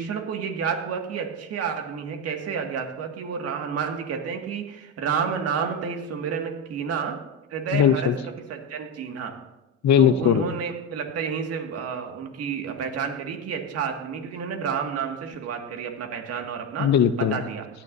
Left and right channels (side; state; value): both; normal; correlation 0.12